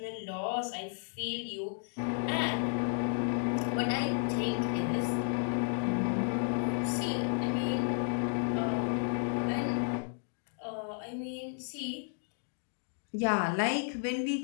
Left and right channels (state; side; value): silent; right; digital silence